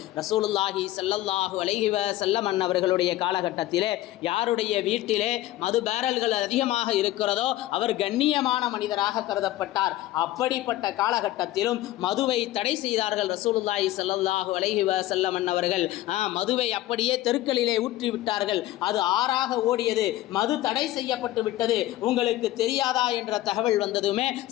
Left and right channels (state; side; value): quieter; right; 15.5 dB